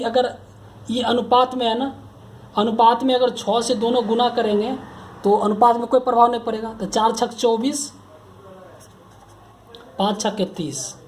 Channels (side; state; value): both; identical; correlation 1.00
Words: अगर ये अनुपात में है ना, अनुपात में अगर 6 से दोनों गुना करेंगे तो अनुपात में कोई प्रभाव नहीं पड़ेगा। तो 4 छक 24, 5 छक 30।